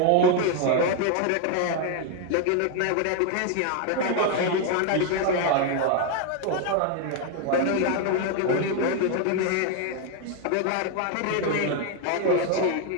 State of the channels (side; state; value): both; different; correlation 0.01